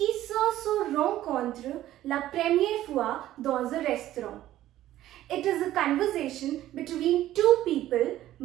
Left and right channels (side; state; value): left; quieter; 13.8 dB